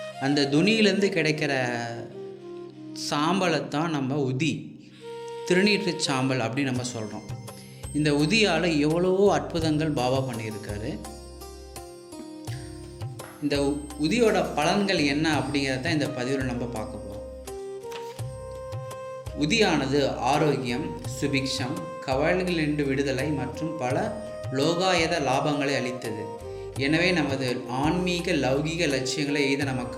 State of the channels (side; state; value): both; identical; correlation 1.00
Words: அந்த துணியிலேருந்து கிடைக்கிற சாம்பலைத்தான் நம்ம உதி, திருநீற்று சாம்பல் அப்படின்னு நம்ம சொல்கிறோம். இந்த உதியால் எவ்வளவோ அற்புதங்கள் பாபா பண்ணியிருக்காரு. இந்த உதியோட பலன்கள் என்ன அப்படிங்கிறத இந்த பதிவில் நம்ம பார்க்க போகிறோம். உதியானது ஆரோக்கியம், சுபிக்ஷம், கவலைகளிலிருந்து விடுதலை மற்றும் பல லோகாயத லாபங்களை அளித்தது. எனவே நமது ஆன்மீக லௌகீக லட்சியங்களை எய்த